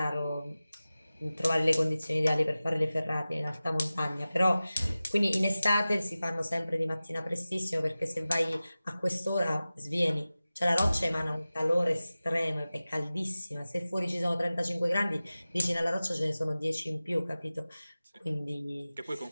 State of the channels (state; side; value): inverted; both; correlation -0.96